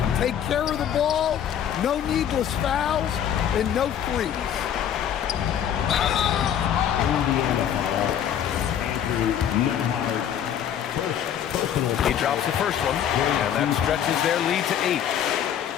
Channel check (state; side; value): quieter; right; 9.5 dB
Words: take care of the ball, no needless fouls, and no threes. He drops the first one, and that stretches their lead to 8.